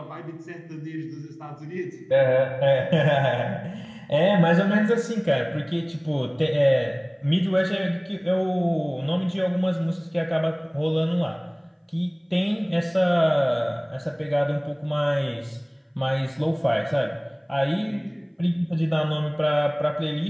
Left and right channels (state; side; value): identical; both; correlation 1.00